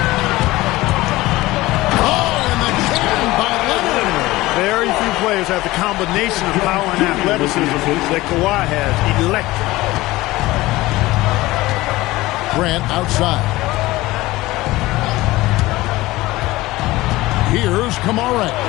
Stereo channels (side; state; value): right; quieter; 18.8 dB